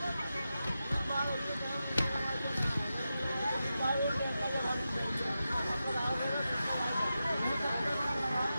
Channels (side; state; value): both; inverted; correlation -0.90